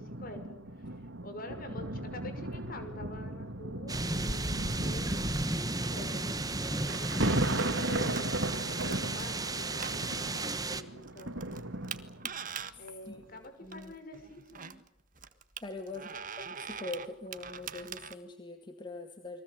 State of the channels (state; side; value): normal; both; correlation 0.38